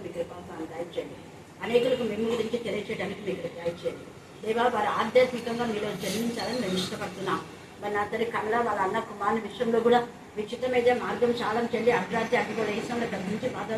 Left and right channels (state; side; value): identical; both; correlation 1.00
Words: మీకు కృపాన్ని దయచేయండి. అనేకులకు మేము గురించి తెలియచేయడానికి మీకు దయచేయండి. దేవా వారు ఆధ్యాత్మికంగా మీరు జన్మించాలని మేము ఇష్టపడుతున్నాం. మరి నా తల్లి కమల వాళ్ళ అన్న కుమారుని విషయంలో కూడా విచిత్రమైన మార్గం చాలా చెల్లి అర్ధరాత్రి అడ్డుగోడ వేసంలో గర్భించి